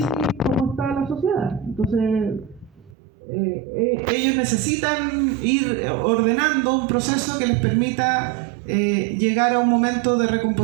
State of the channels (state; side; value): drops out; left; at 3.0 s